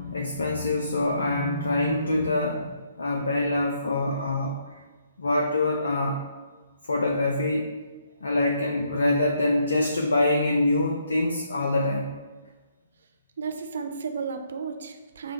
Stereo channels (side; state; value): both; inverted; correlation -0.73